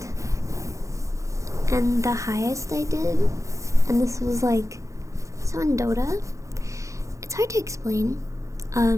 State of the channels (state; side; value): late; left; 0.15 ms